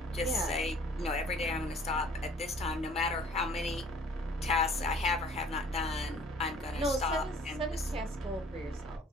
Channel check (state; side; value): normal; both; correlation 0.53